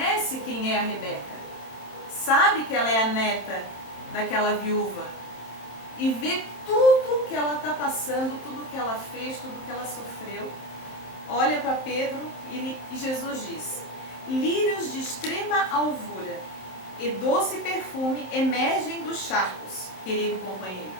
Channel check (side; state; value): right; late; 27 ms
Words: quem é a Rebeca. Sabe que ela é a neta daquela viúva. E vê tudo que ela está passando, tudo que ela fez, tudo que ela sofreu. Olha para Pedro e Jesus diz: lírios de extrema alvura e doce perfume emergem dos charcos, querido companheiro.